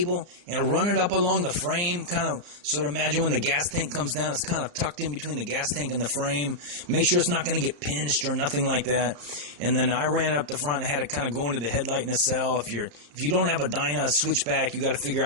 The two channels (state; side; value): late; left; 34 ms